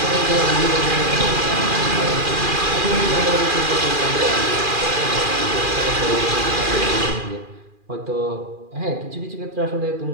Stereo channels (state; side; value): late; left; 2.4 ms